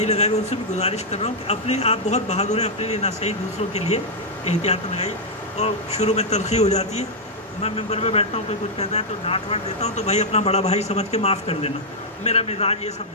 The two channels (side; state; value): both; normal; correlation -0.05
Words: لگائے ہوئے ان سے بھی گزارش کر رہا ہوں کہ اپنے آپ بہت بہادر ہیں، اپنے لیے نہ صحیح دوسروں کے لیے احتیاط لگائی۔ اور شروع میں تلخی ہو جاتی ہے، میں ممبر میں بیٹھتا ہوں کوئی کچھ کہتا ہے تو ڈانٹ واٹ دیتا ہوں، تو بھائی اپنا بڑا بھائی سمجھ کے معاف کر دینا، میرا مزاج یہ سب